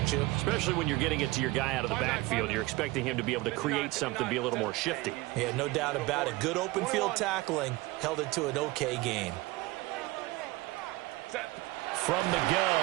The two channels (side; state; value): left; quieter; 21.0 dB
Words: you? Especially when you're getting it to your guy out of the backfield. You're expecting him to be able to create something, be a little more shifty. Yeah, no doubt about it. Good open field tackling held it to an okay gain. From the